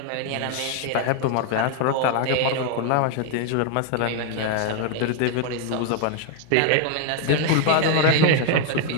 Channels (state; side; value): different; both; correlation 0.01